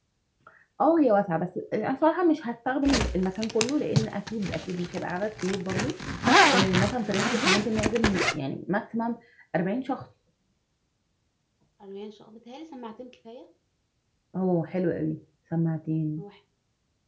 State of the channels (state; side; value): identical; both; correlation 1.00